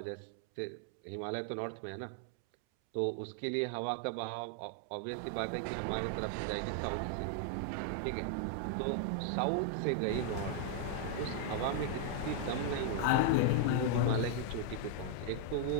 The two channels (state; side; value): different; both; correlation 0.00